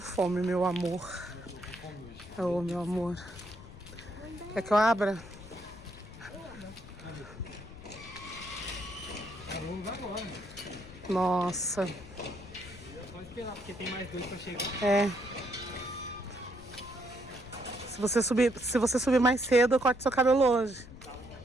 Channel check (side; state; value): left; noise; rumble, 17 dB below the sound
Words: meu amor. Ô, meu amor. Quer que eu abra? Vamos agora. Nossa. Pode esperar, porque tem mais 2 pra chegar. É. Se você subir mais cedo, eu corto seu cabelo hoje.